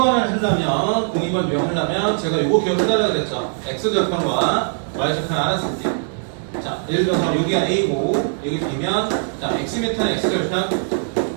하려면 02번 유형하려면 제가 요거 기억해달라고 그랬죠. X좌표과 Y좌표를 알았을 때 자, 예를 들어서 여기가 A고 여기 B면 자, X미터는 X좌표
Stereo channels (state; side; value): silent; left; digital silence